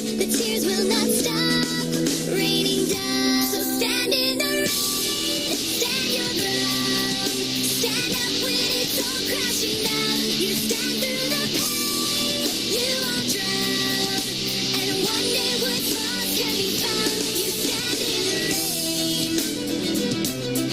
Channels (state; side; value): noise; left; rumble, 21 dB below the sound